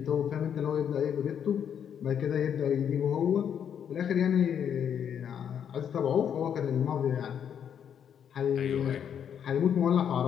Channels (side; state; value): right; quieter; 8.5 dB